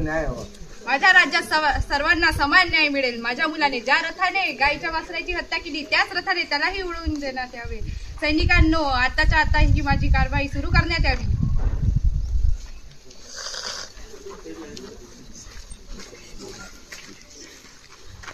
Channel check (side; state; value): both; identical; correlation 1.00